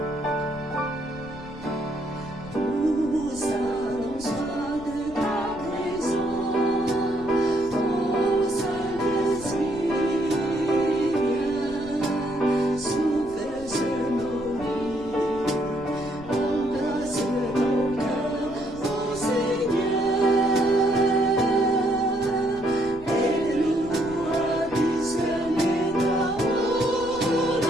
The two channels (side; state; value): left; noise; rumble, 18 dB below the sound